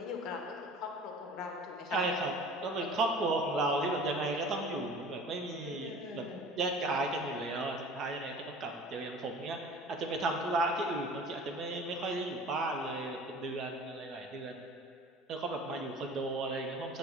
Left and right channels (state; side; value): normal; both; correlation 0.43